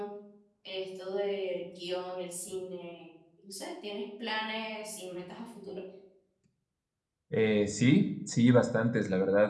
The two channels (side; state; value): both; identical; correlation 1.00